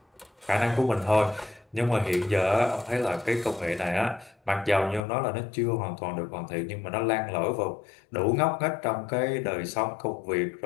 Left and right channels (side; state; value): right; drops out; at 5.1 s